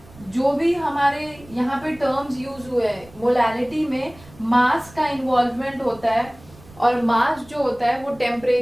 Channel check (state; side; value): noise; right; rumble, 23 dB below the sound